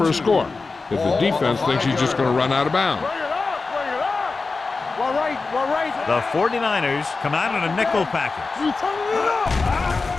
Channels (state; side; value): quieter; right; 4.0 dB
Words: a score if the defense thinks he's just going to run out of bounds. Bring it up. Well, right. The 49ers come out in a nickel package. You turning it up.